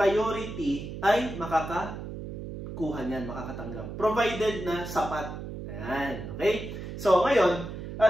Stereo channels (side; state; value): right; noise; hum, 8 dB below the sound